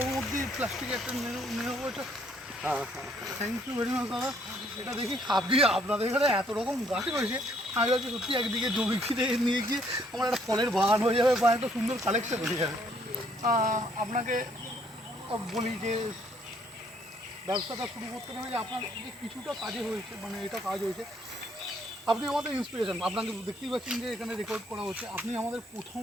মধ্যে প্লাস্টিক একটা নেবো ওটা। হ্যাঁ হ্যাঁ, থ্যাংক ইউ ভেরি মাচ দাদা। এটা দেখি আপনাদের এখানে এত রকম গাছ রয়েছে, আমি ভাবছি সত্যি একদিকে জমি ফিরে নিয়ে গিয়ে আমার একটা ফলের বাগান হয়ে যাবে বা একটা সুন্দর কালেকশন হয়ে যাবে। আপনাকে বলি যে ব্যবসাটা শুরু করতে গেলে যে আপনার যে কিছুটা কাজে হয়েছে, মানে এটা কাজ হয়েছে, আপনি আমাদের ইন্সপিরেশন। আপনাকে দেখতেই পাচ্ছেন যে এখানে রেকর্ড করা হচ্ছে, আপনি আমাদের প্রথম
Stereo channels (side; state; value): both; normal; correlation 0.66